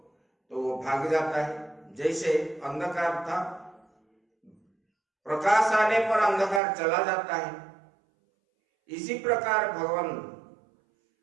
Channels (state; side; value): drops out; left; at 6.6 s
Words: तो वो भाग जाता है। जैसे अंधकार था, प्रकाश आने पर अंधकार चला जाता है, इसी प्रकार भगवान